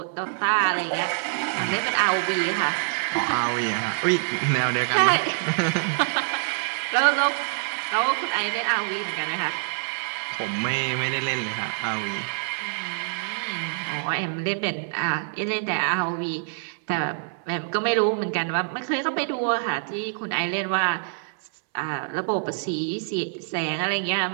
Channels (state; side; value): silent; left; 61 dB below the other